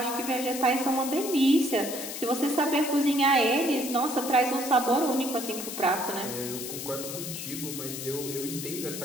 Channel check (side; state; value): left; noise; hiss, 7 dB below the sound